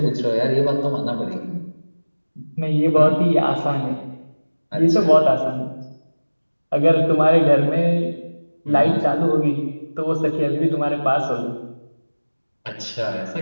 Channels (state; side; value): inverted; both; correlation -1.00